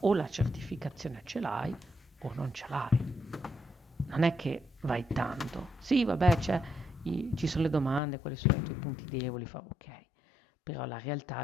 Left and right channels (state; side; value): drops out; right; at 8.0 s